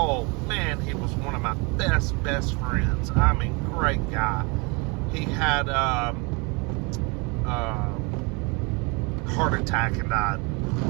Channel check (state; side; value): quieter; left; 29.6 dB